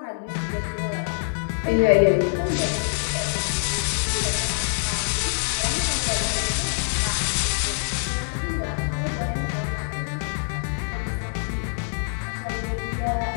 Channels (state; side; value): silent; right; digital silence